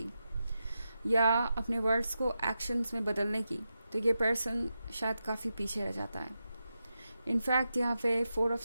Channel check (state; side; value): inverted; both; correlation -0.89